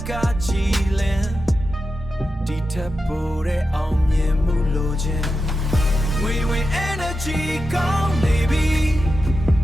ကကြည်လင်ဒီထက်ပိုတဲ့အောင်မြင်မှုလိုချင်ငွေဝင် energy ကောင်းနေပြီ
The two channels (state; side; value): normal; both; correlation 0.90